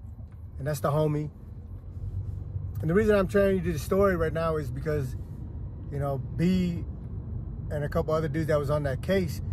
and that's the homie. And the reason I'm telling you the story right now is because, you know, B and a couple other dudes that was on that case,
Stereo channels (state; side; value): identical; both; correlation 1.00